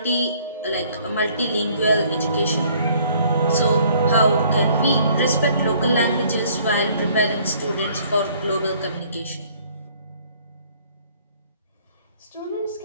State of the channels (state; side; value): inverted; both; correlation -0.59